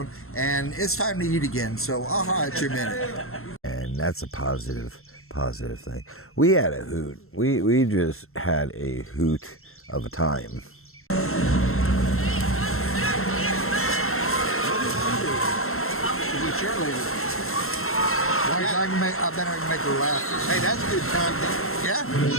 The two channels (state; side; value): late; right; 0.62 ms